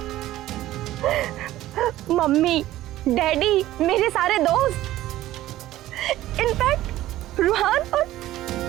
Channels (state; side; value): quieter; left; 14.9 dB